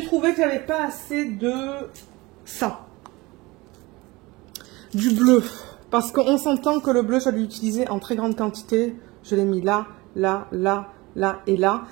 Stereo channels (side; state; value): left; quieter; 22.3 dB